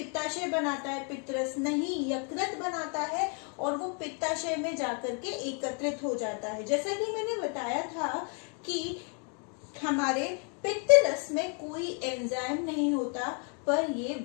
बनाता है पित्त रस, नहीं, यकृत बनाता है और वो पित्ताशय में जाकर के एकत्रित हो जाता है। जैसा कि मैंने बताया था कि हमारे पित्त रस में कोई एंजाइम नहीं होता, पर ये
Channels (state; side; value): quieter; right; 39.4 dB